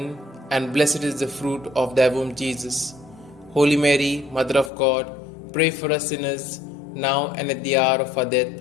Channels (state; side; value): drops out; right; at 4.7 s